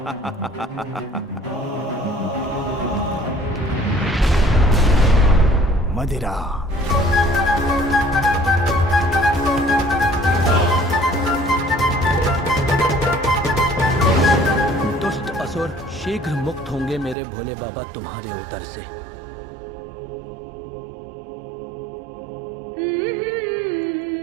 मदिरा। दुष्ट असुर शीघ्र मुक्त होंगे मेरे भोले बाबा तुम्हारे उदर से।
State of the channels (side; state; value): left; drops out; at 17.2 s